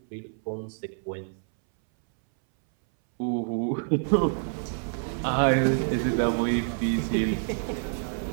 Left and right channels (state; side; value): silent; left; 60 dB below the other